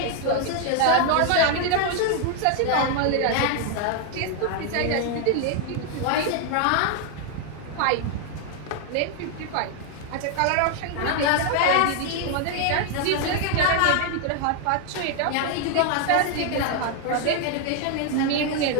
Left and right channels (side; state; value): both; different; correlation 0.00